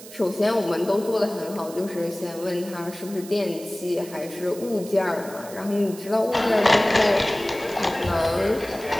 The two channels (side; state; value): right; noise; hiss, 16 dB below the sound